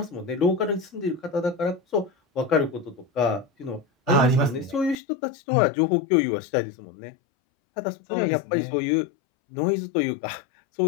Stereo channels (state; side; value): drops out; right; at 5.0 s